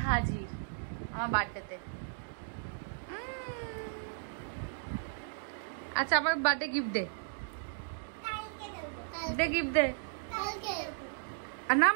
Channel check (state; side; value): silent; left; digital silence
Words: হাজির আমার বার্থডেতে। আচ্ছা আমার বার্থডে গিফট দে, গিফট দে। না